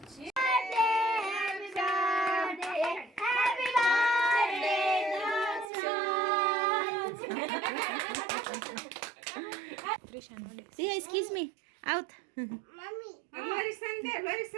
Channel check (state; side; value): drops out; left; at 5.7 s